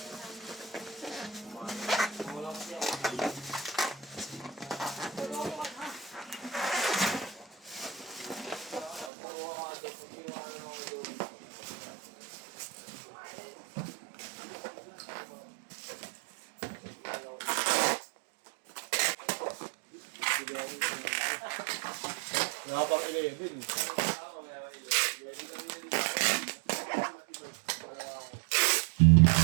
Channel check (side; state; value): left; drops out; at 9.1 s